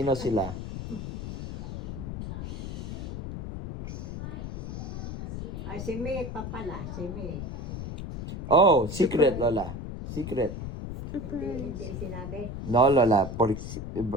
sila? Ay, si May pa pala. Si May. Oh, secret, Lola. Secret. Hindi sinabi. No, Lola.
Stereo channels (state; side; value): noise; left; rumble, 6 dB below the sound